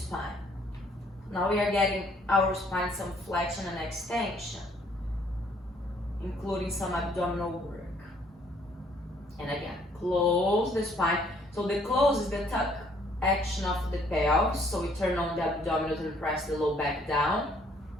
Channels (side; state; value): both; normal; correlation 0.63